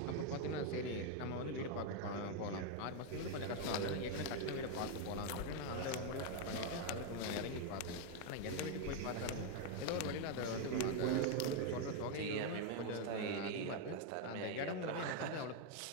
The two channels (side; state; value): both; different; correlation 0.01